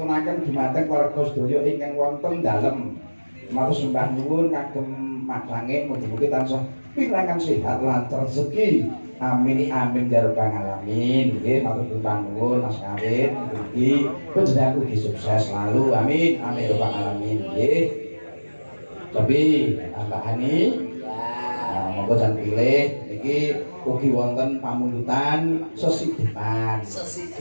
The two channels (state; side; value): inverted; both; correlation -1.00